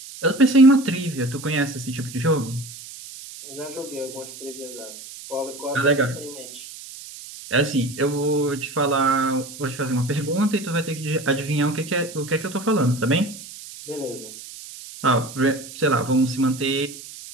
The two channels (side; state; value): right; noise; hiss, 14 dB below the sound